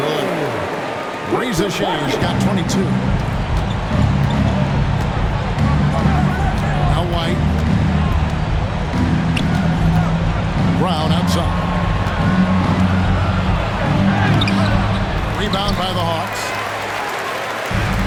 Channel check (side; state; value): both; identical; correlation 1.00